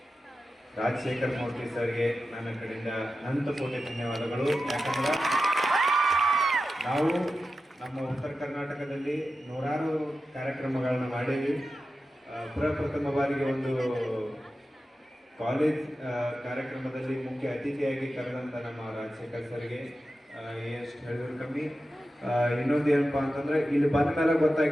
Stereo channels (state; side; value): normal; both; correlation 0.92